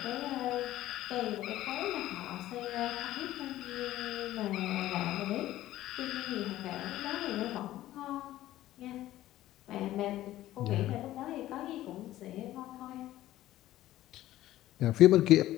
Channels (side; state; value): right; quieter; 14.6 dB